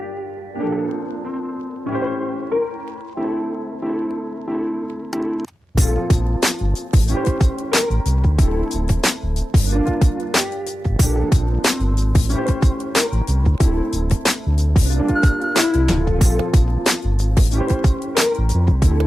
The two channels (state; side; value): normal; both; correlation 0.94